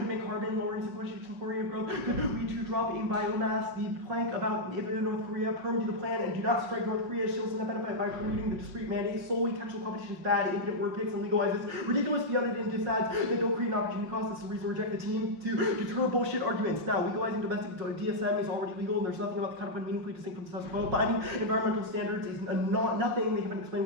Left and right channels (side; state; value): left; late; 6.3 ms